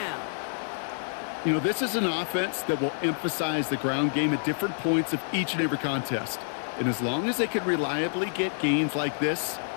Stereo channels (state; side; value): silent; right; digital silence